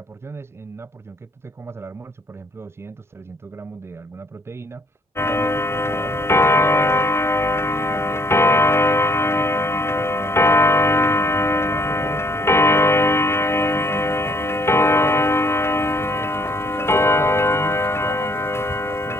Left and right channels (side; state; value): both; normal; correlation 0.64